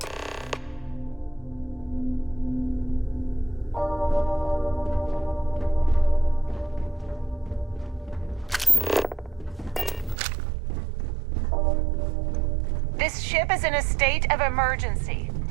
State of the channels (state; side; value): drops out; left; at 10.2 s